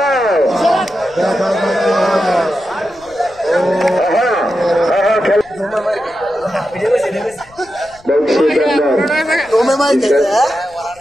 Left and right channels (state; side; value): noise; left; rumble, 28 dB below the sound